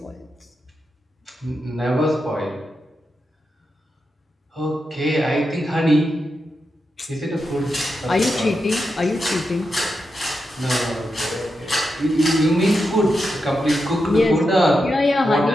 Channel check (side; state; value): both; normal; correlation 0.87